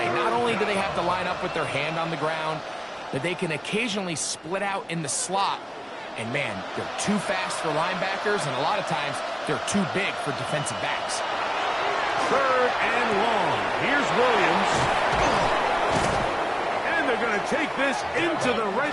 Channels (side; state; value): both; identical; correlation 1.00